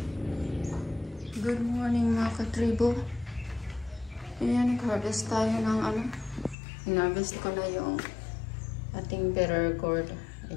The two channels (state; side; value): drops out; right; at 6.6 s